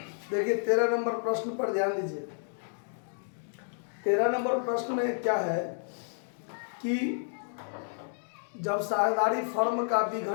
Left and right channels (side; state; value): right; silent; digital silence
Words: 13 नंबर प्रश्न पर ध्यान दीजिए। 13 नंबर प्रश्न में क्या है कि जब साझेदारी फर्म का